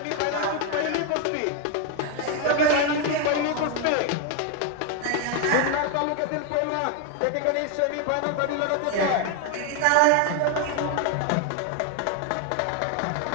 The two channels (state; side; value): different; both; correlation 0.01